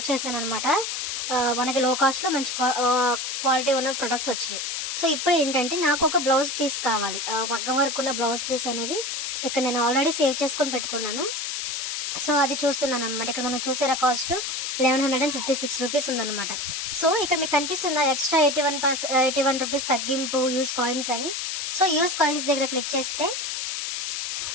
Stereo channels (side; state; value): left; noise; hiss, 3 dB below the sound